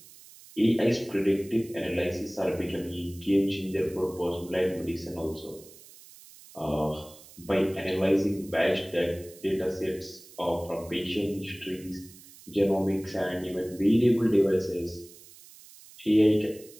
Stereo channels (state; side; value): noise; right; hiss, 21 dB below the sound